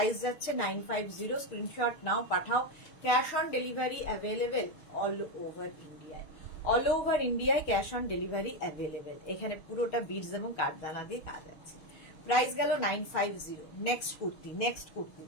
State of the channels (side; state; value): right; late; 6.5 ms